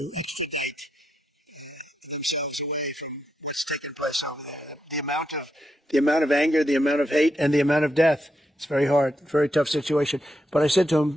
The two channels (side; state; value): both; normal; correlation 0.83